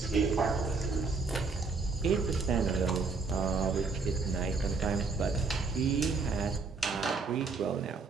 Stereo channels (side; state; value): left; quieter; 4.4 dB